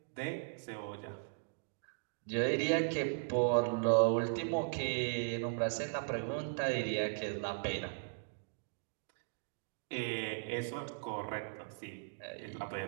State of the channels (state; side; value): silent; left; digital silence